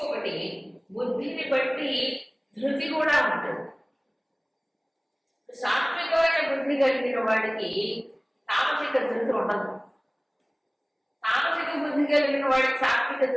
బుద్ధిని బట్టి ధృతి కూడా ఉంటుంది. సాత్వికమైన బుద్ధి కలిగిన వాడికి తామసిక ధృతి ఉండదు. తామసిక బుద్ధి కలిగిన వాడికి సాత్విక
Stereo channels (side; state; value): both; identical; correlation 1.00